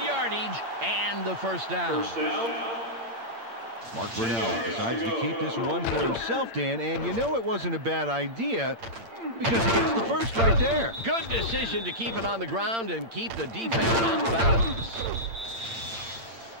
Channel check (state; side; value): late; left; 8.8 ms